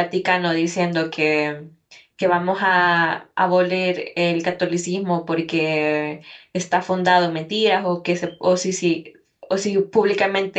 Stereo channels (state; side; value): identical; both; correlation 1.00